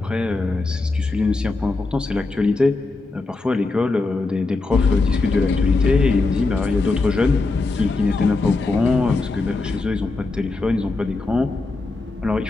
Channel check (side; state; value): right; quieter; 3.5 dB